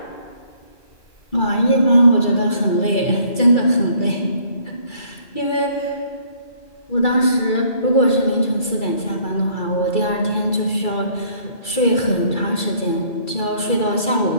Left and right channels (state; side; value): late; right; 2.3 ms